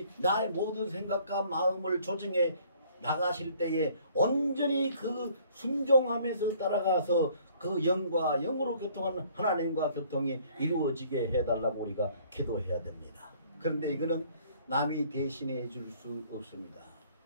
나의 모든 생각과 마음을 조정해 나가실 때에 온전히 그 순종하면서 따라가서 그 영과 영으로 교통하는 하나님과 교통이 이루어지게 해달라고 우리가 기도해야 됩니다. 그런데 이거는 남이 대신해 줄 수 없습니다.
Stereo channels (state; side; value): inverted; both; correlation -0.58